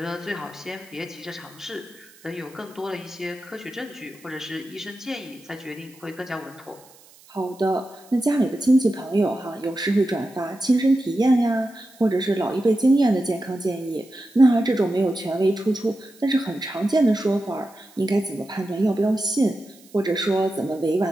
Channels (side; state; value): right; noise; hiss, 26 dB below the sound